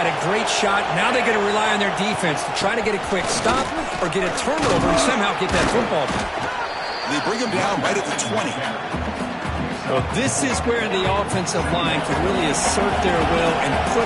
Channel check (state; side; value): identical; both; correlation 1.00